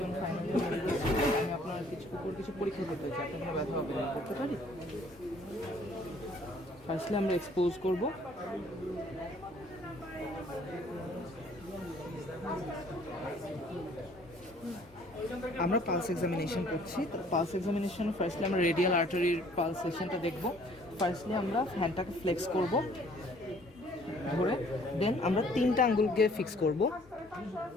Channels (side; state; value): left; noise; hum, 30 dB below the sound